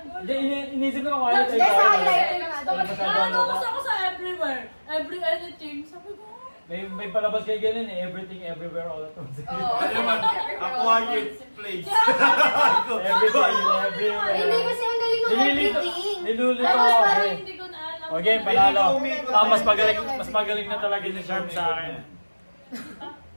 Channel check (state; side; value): inverted; both; correlation -1.00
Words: Hindi, inisip ko quiet. Hindi, sa highlighter nga doon. Nakatapos ako sa everywhere. Every anything. Sabi ko, May palabas kayo ganun eh. Everything, everywhere, all at once. Oo. Ano naman? A quiet place. Everything, everywhere. Hindi kasi ang galing ng everything. Nilulito Tapos ako parang eh. hindi ko na alam. Okay, panalo. Umikot Ah, na mas magaling na talaga ni Sharp sa akin.